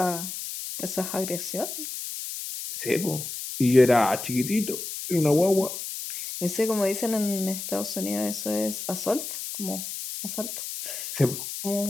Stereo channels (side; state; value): left; noise; hiss, 7 dB below the sound